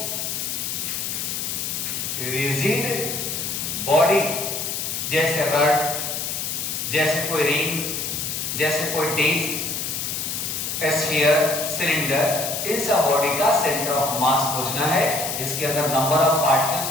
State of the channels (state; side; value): noise; left; hiss, 3 dB below the sound